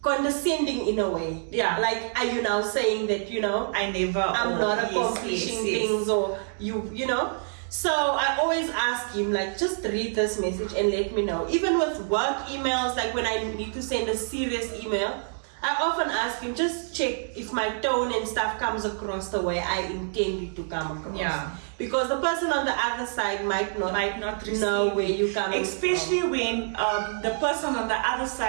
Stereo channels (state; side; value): silent; left; digital silence